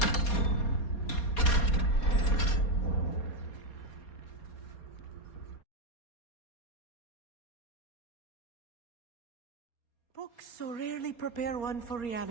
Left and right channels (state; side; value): late; right; 4.2 ms